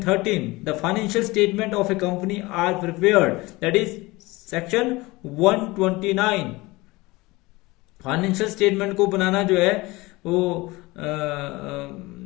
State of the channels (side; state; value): right; quieter; 21.9 dB